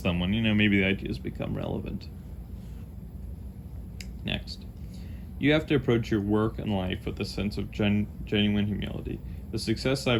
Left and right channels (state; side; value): identical; both; correlation 1.00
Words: when maybe the ideas become relevant. Next. You have to approach your work and life with a sense of genuine humility. The success